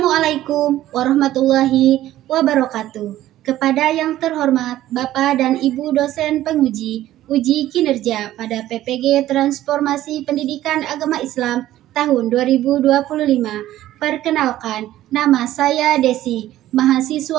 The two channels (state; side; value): quieter; left; 14.0 dB